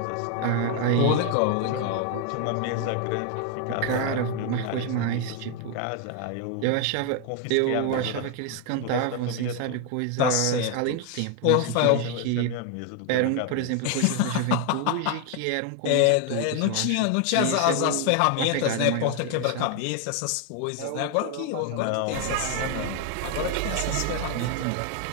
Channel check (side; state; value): both; different; correlation 0.01